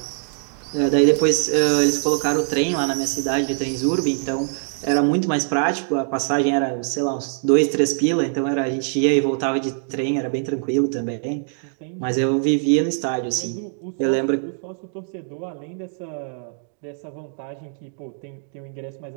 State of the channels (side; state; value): left; silent; digital silence